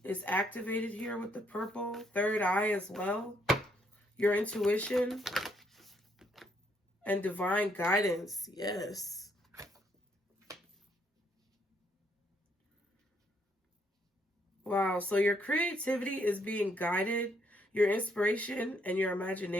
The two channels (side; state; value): both; normal; correlation 0.72